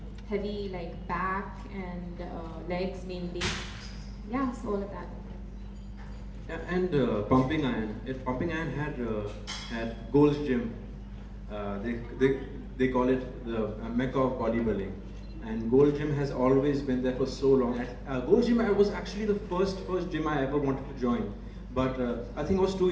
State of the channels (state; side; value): identical; both; correlation 1.00